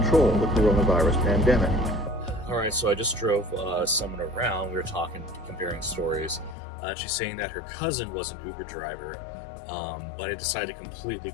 the coronavirus pandemic. All right, so I just drove someone around. We were talking, comparing stories. She's saying that her cousin was an Uber driver, but I decided to completely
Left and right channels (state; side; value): drops out; right; at 6.6 s